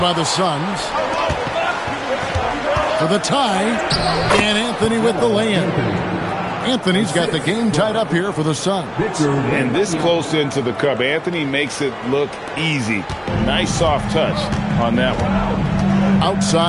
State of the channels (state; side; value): identical; both; correlation 1.00